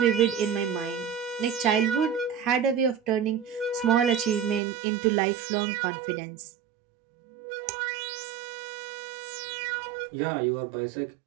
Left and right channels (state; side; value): drops out; left; at 4.6 s